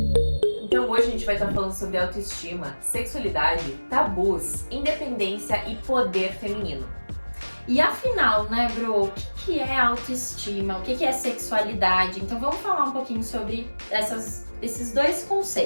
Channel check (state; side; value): inverted; both; correlation -1.00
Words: Então hoje a gente vai estar falando sobre autoestima, sexualidade, tabus, independência e poder feminino. E afinal, né, Bro, o que é autoestima? O que é sexualidade? Então vamos falar um pouquinho sobre esses dois